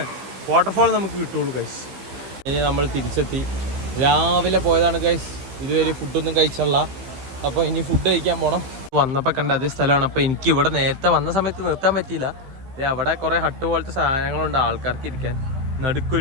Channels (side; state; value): left; late; 15 ms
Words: വാട്ടർഫാൾ നമുക്ക് കിട്ടുള്ളൂ ഗൈസ്. ഇനി നമ്മൾ തിരിച്ചെത്തി. രാവിലെ പോയതാണ് ഗൈസ്, ഇതുവരെ ഫുഡൊന്നും കഴിച്ചുള്ള. അപ്പോൾ ഇനി ഫുഡ് കഴിക്കാൻ പോകണം. വന്നപ്പോൾ കണ്ട അതേ സ്ഥലമാണ്. അപ്പോൾ എനിക്ക് ഇവിടെ നേരത്തെ വന്ന സമയത്ത് നിർത്താൻ പറ്റിയില്ല. അവിടെ കുറേ ഹട്ട് പോലത്തെ സാധനങ്ങളുണ്ട് ആൾക്കാർക്ക് ഇരിക്കാൻ.